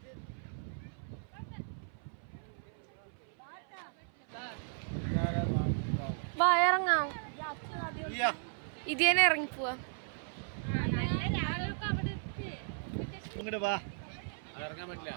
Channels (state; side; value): silent; left; 54 dB below the other